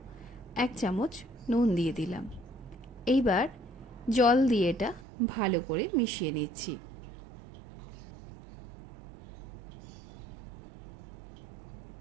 1 চামচ নুন দিয়ে দিলাম। এইবার জল দিয়ে এটা ভালো করে মিশিয়ে নিচ্ছি।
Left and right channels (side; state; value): left; drops out; at 5.1 s